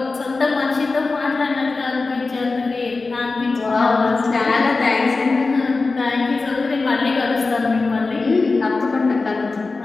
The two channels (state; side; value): quieter; right; 3.8 dB